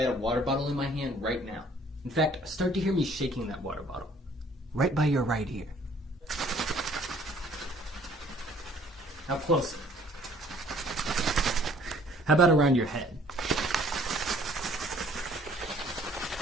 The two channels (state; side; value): normal; both; correlation 0.57